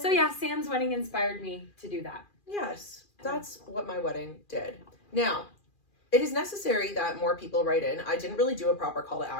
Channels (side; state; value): right; late; 2.4 ms